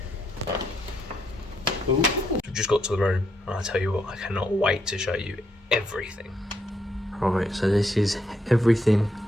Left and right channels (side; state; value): both; normal; correlation 0.77